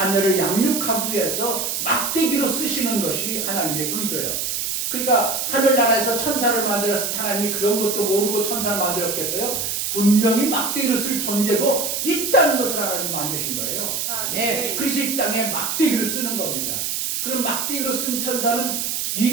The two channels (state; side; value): noise; right; hiss, 1 dB below the sound